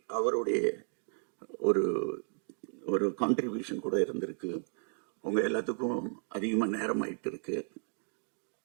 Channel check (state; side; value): silent; left; 55 dB below the other